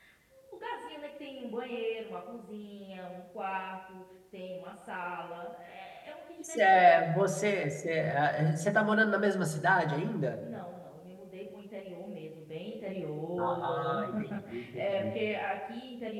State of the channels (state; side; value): identical; both; correlation 1.00